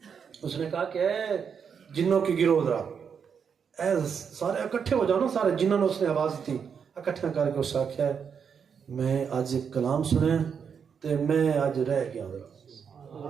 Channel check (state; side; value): quieter; left; 6.8 dB